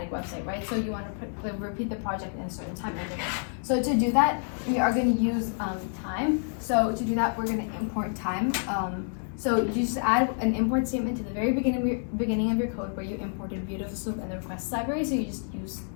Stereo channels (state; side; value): silent; right; 59 dB below the other